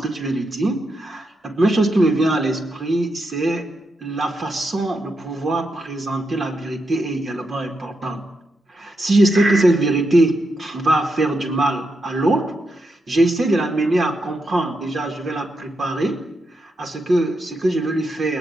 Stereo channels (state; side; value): normal; both; correlation 0.84